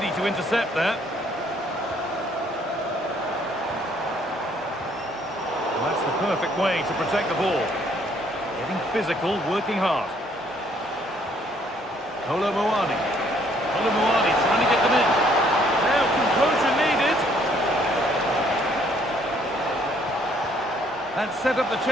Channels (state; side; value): normal; both; correlation 0.64